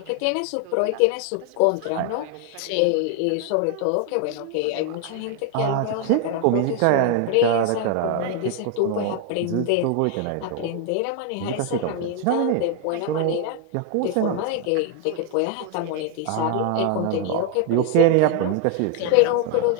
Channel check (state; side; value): different; both; correlation 0.01